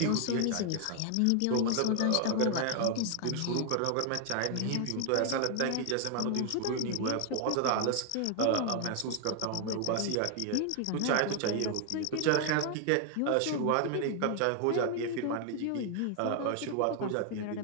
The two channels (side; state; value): both; different; correlation 0.00